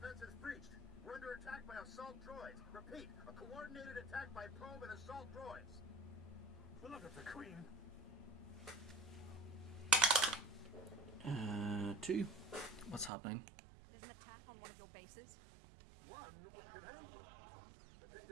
is breached. We're under attack by assault droids. Repeat, a coordinated attack by probe and assault droids. Blood of the Queen. 2. What's happening? There's an attack on one of your bases. One wicked aim. The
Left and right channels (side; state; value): left; drops out; at 13.1 s